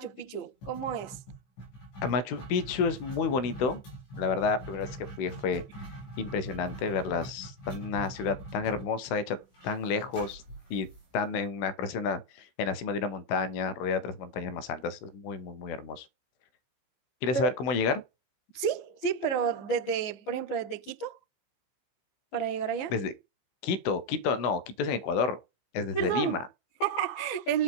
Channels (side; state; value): right; late; 15 ms